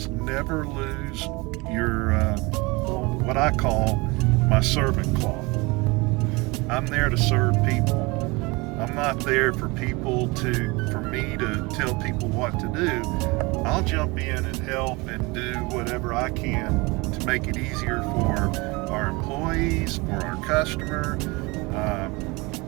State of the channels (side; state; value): left; quieter; 25.2 dB